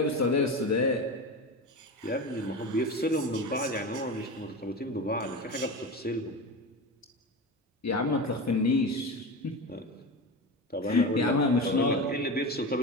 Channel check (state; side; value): normal; both; correlation 0.25